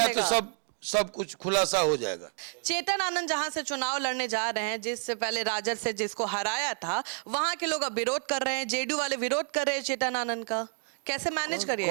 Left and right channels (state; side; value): silent; left; 58 dB below the other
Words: तो चलेगा। सब कुछ खुलासा हो जाएगा। चेतन आनंद जहां से चुनाव लड़ने जा रहे हैं, जिससे पहले राजद से जिसको हराया था, वहां के लोग अब विरोध कर रहे हैं, जेडीयू वाले विरोध कर रहे हैं चेतन आनंद का। कैसे मैनेज